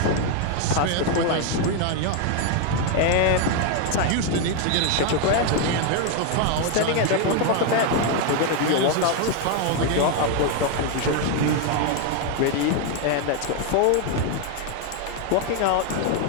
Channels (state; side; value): different; both; correlation 0.01